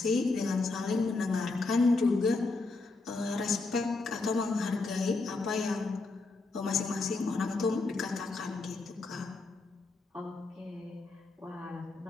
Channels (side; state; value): right; quieter; 3.6 dB